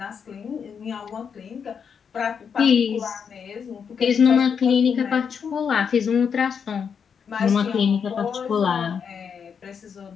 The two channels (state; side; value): quieter; right; 6.8 dB